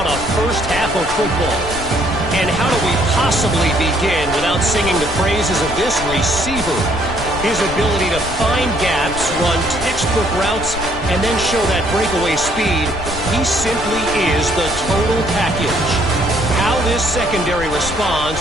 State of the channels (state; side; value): noise; left; rumble, 10 dB below the sound